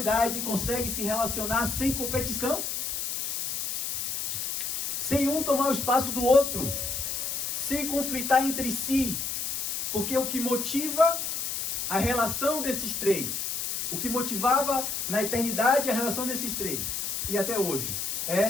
conseguem se relacionar sem competição, sem um tomar o espaço do outro, sem conflitar entre si, porque o que motiva a relação desses 3, o que motivava na eternidade a relação desses 3, e até hoje,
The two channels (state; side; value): noise; left; hiss, 2 dB below the sound